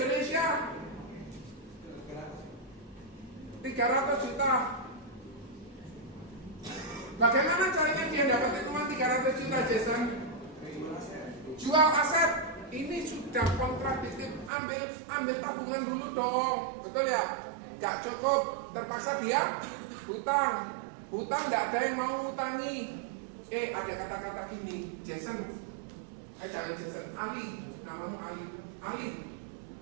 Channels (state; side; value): drops out; left; at 14.5 s